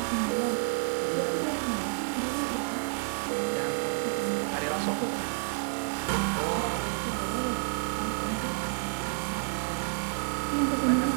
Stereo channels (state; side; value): silent; left; 58 dB below the other